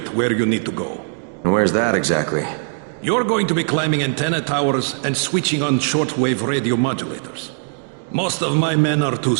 where you need to go. And where's that exactly? You're going to be climbing antenna towers and switching on shortwave radio modulators. Most of my men are too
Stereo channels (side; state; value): left; silent; digital silence